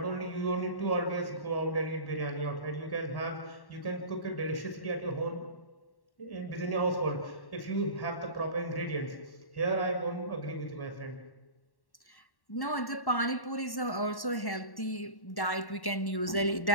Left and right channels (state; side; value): late; right; 1.1 ms